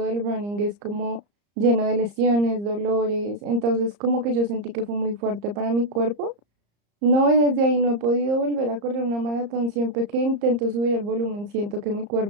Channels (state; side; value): late; left; 34 ms